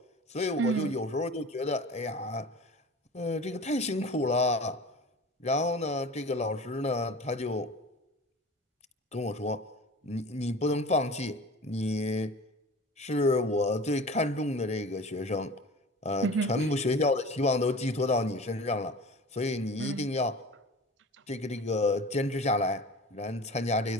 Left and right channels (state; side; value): normal; both; correlation 0.38